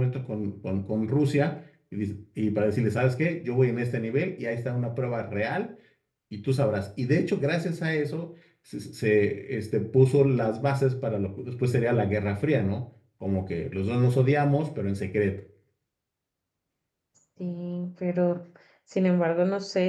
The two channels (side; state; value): both; identical; correlation 1.00